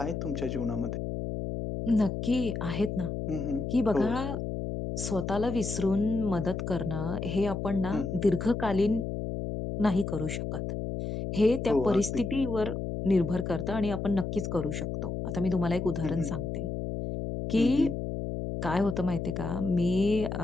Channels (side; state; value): left; noise; hum, 4 dB below the sound